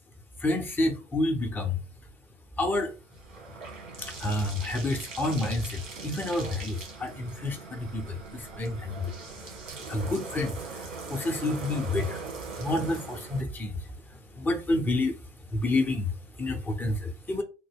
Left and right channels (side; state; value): both; normal; correlation 0.69